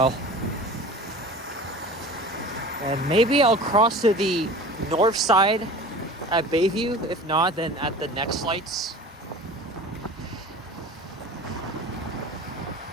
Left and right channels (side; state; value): both; normal; correlation 0.39